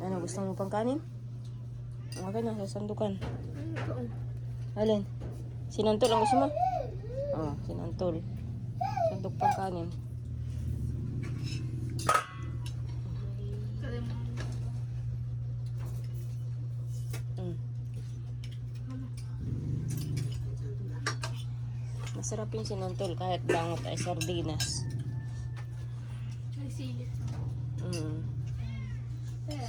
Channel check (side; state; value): both; identical; correlation 1.00